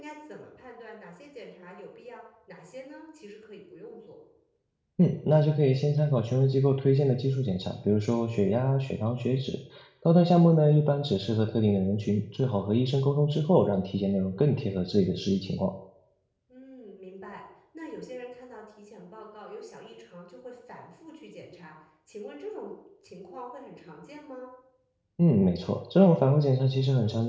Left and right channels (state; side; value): identical; both; correlation 1.00